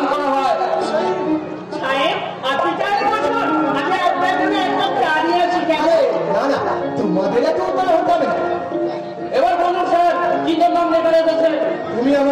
করা হয়। তোমাদের এত উপায় হতে হবে না। এবার বলুন স্যার কি জন্য লেখা রেখেছে? তুমি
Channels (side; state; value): both; identical; correlation 1.00